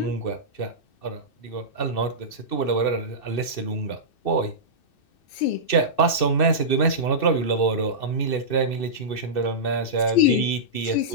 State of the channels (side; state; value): right; late; 2.6 ms